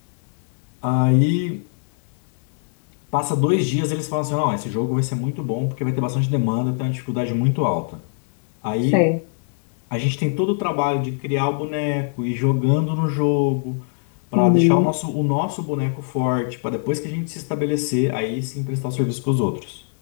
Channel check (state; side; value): silent; right; 64 dB below the other